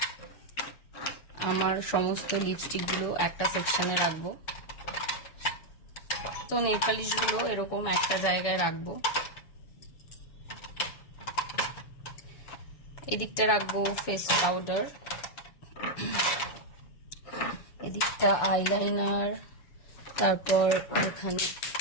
আমার সমস্ত লিপস্টিক গুলো একটা সেকশনে রাখবো। তো নেল পালিশ গুলো এরকম একটা জায়গায় রাখবো। এদিকটা রাখবো ফেস পাউডার, এদিকটা আইলাইনার, তারপর এখানে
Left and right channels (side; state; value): right; late; 6.9 ms